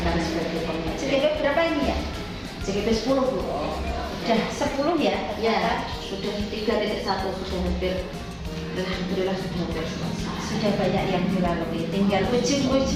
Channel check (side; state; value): both; identical; correlation 1.00